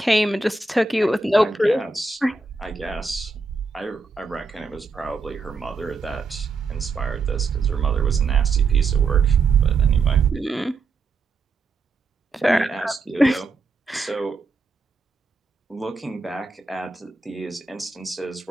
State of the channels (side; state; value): left; quieter; 4.0 dB